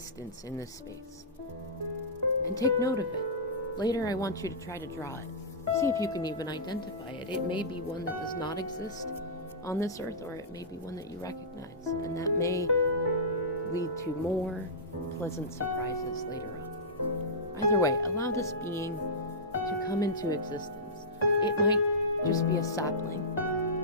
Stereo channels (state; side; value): normal; both; correlation -0.16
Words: in this space. And take note of it. Later I want you to try to draw it. See if you can even identify it. It may be one that does not exist on this earth, or it may be one that you recognize. And that may lead to more pleasant surprises later on. Either way, allow this being to come into existence. It might just be a sapling,